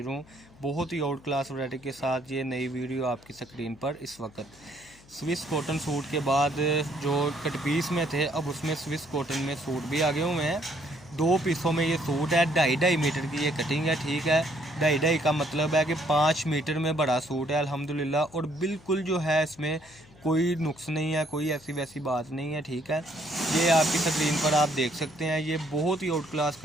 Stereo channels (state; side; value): noise; left; hum, 25 dB below the sound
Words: हूँ बहुत ही आउट क्लास वैरायटी के साथ। ये नई वीडियो आपकी स्क्रीन पर इस वक्त स्विस कॉटन सूट के बाद जो कट पीस में थे, अब उसमें स्विस कॉटन में सूट भी आगे हुए हैं। दो पीसों में ये सूट है, 2.5 मीटर की ये कटिंग है। ठीक है, 2.5 का मतलब है कि 5 मीटर में बड़ा सूट है अल्हम्दुलिल्लाह। और बिल्कुल जो है इसमें कोई नुक्स नहीं है, कोई ऐसी वैसी बात नहीं है। ठीक है, ये आपकी स्क्रीन पर आप देख सकते हैं, ये बहुत ही आउट क्लास